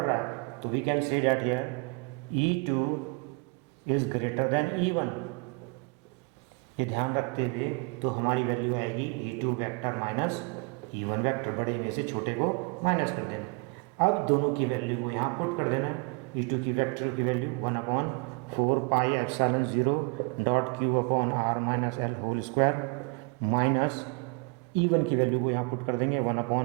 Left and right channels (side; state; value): left; quieter; 30.6 dB